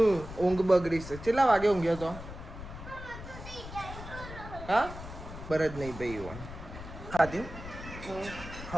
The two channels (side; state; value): left; noise; rumble, 11 dB below the sound